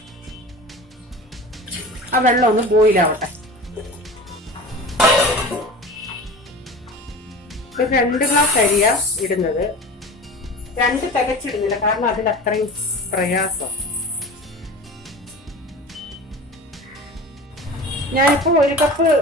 ആ വെള്ളം ഒന്ന് ബോയിലാവട്ടെ. ഒരു 2 ഗ്ലാസ് അരിയാ ഇടുന്നത്. 2 തികച്ചിടുന്നില്ല, കാരണം അതിൽ അത്രയും പ്രയാസം. ഞാനിപ്പോ 1 കപ്പ്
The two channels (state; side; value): normal; both; correlation 0.35